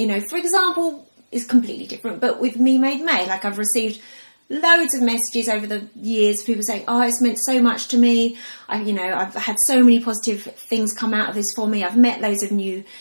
know, for example, it's completely different, but with Me Made May, like I've received loads of messages over the years, people saying, oh, it's meant so much to me. I've had so many positive things come out of this for me. I've met loads of new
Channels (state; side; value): inverted; both; correlation -1.00